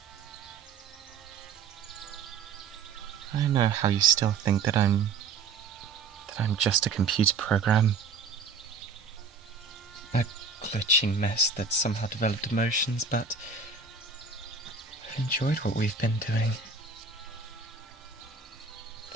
I know how you still think that I'm just a computer program. A glitching mess that somehow developed emotions, but I've enjoyed what we've been doing.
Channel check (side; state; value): left; quieter; 4.8 dB